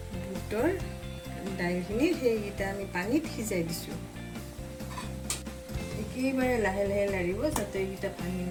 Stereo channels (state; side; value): identical; both; correlation 1.00